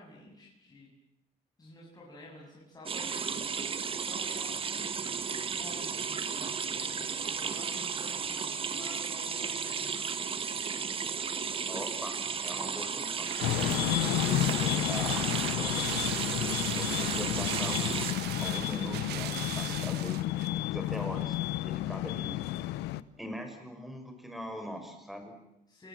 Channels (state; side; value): normal; both; correlation 0.23